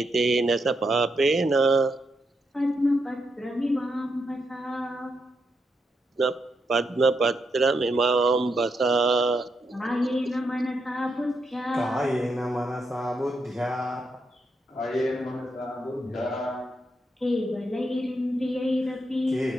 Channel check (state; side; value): normal; both; correlation 0.81